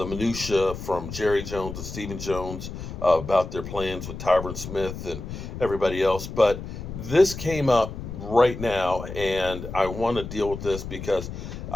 minutia from Jerry Jones and Stephen Jones about their plans with Tyron Smith and everybody else. But this came up right now, and I want to deal with this because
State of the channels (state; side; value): noise; left; rumble, 9 dB below the sound